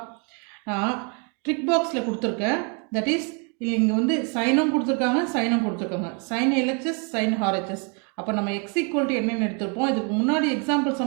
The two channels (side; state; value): left; quieter; 36.4 dB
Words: நான் ட்ரிக் பாக்ஸில் கொடுத்துருக்கேன். தட் இஸ் இங்கே வந்து சைனும் கொடுத்துருக்காங்க, சைனும் கொடுத்துருக்காங்க. Sine LHS, sine RHS. அப்போ நம்ம எக்ஸ் ஈக்குவல் டு என்னென்னு எடுத்துருப்போம். இதுக்கு முன்னாடி எக்ஸாம்பிள்ஸ்